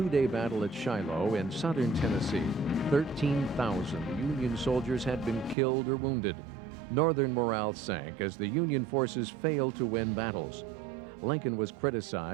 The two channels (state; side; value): drops out; left; at 5.6 s